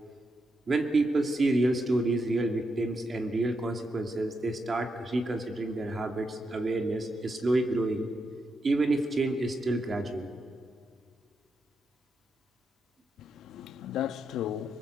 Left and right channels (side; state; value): both; normal; correlation 0.83